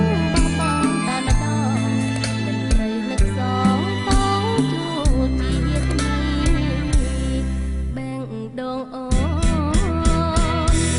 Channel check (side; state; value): both; identical; correlation 1.00